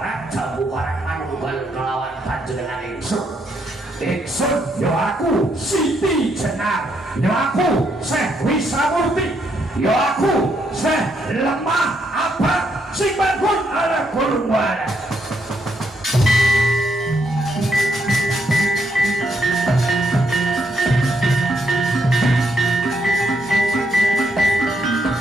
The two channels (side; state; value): both; normal; correlation 0.76